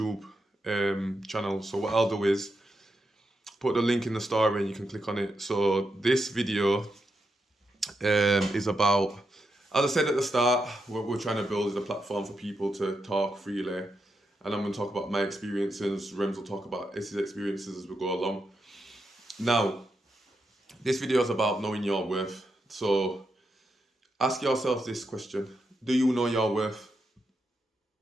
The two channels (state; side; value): normal; both; correlation 0.85